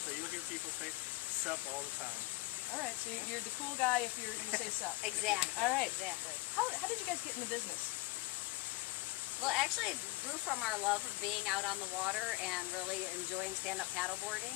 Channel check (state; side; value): quieter; right; 23.0 dB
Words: you'll hear people say SUP all the time. All right, so you're the cool guy if you say SUP. Exactly. All right. Exactly. How did you guys get in the business? Well, actually, it grew from our love of being out on the water and really enjoying stand-up paddleboarding.